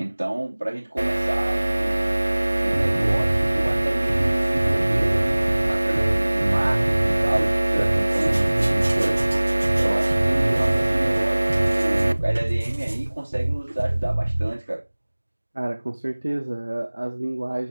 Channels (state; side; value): inverted; both; correlation -1.00